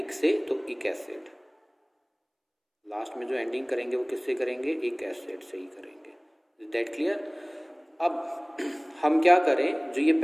से, तो इक एसिड। लास्ट में जो एंडिंग करेंगे वो किससे करेंगे, इक एसिड से ही करेंगे। Is that clear. अब हम क्या करें, जो ये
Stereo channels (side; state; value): both; identical; correlation 1.00